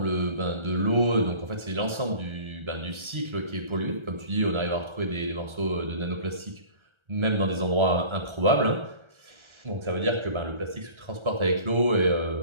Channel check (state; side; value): late; left; 1.3 ms